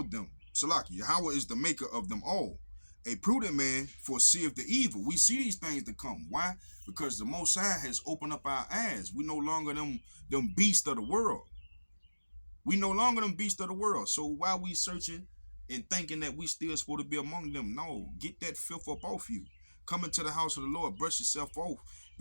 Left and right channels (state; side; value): inverted; both; correlation -1.00